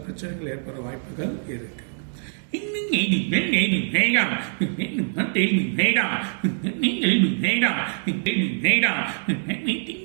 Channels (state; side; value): silent; left; digital silence